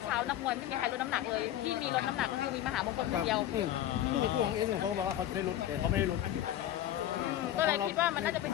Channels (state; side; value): quieter; right; 12.4 dB